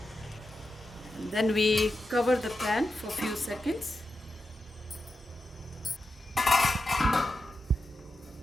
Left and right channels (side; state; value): both; normal; correlation 0.90